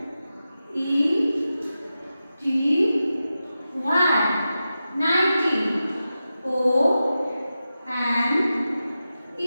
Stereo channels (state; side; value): inverted; both; correlation -0.92